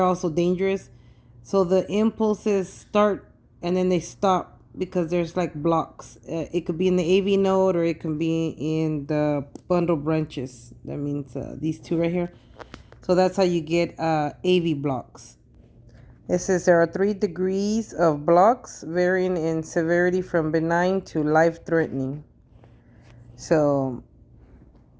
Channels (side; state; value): both; identical; correlation 1.00